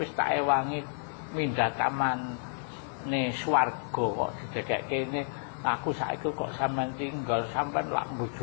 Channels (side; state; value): right; silent; digital silence